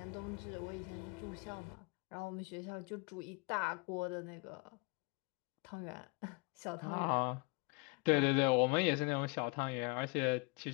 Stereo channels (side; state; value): right; quieter; 29.2 dB